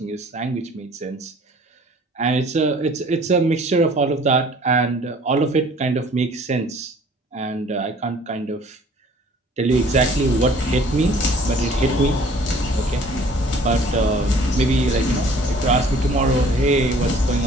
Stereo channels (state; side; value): normal; both; correlation 0.53